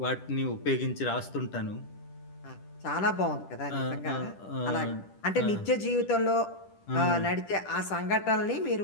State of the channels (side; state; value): right; late; 10 ms